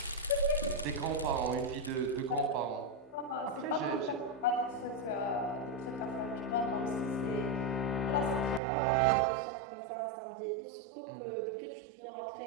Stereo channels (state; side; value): drops out; left; at 8.6 s